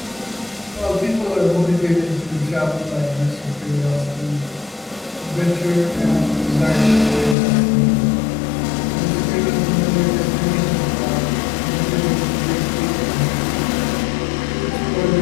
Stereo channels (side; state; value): right; drops out; at 7.4 s